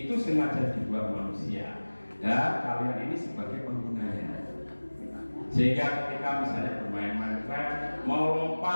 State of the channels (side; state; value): both; inverted; correlation -1.00